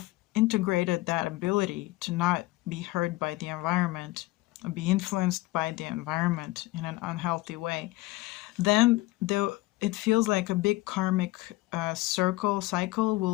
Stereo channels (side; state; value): right; quieter; 19.7 dB